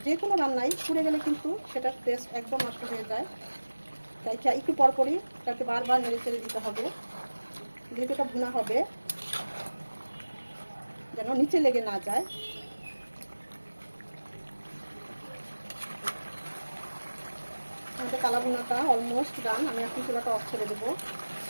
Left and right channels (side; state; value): both; inverted; correlation -1.00